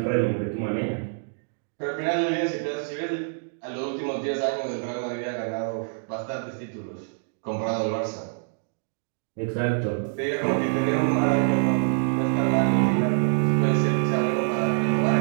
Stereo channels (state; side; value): silent; left; digital silence